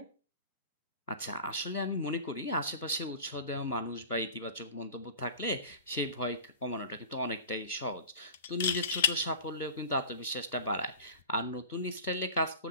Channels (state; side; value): inverted; both; correlation -0.36